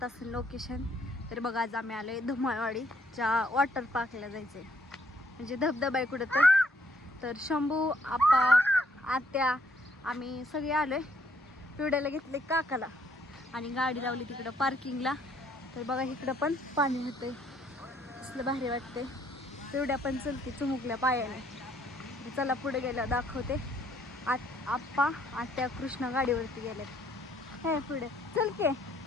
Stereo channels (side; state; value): both; normal; correlation 0.67